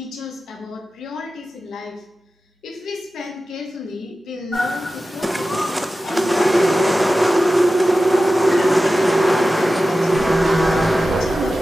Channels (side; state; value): both; normal; correlation 0.94